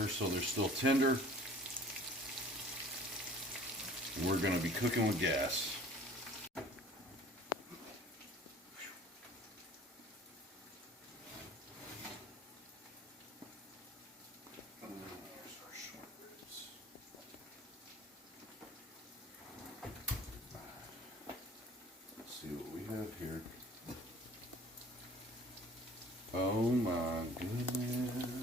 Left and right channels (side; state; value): both; normal; correlation 0.49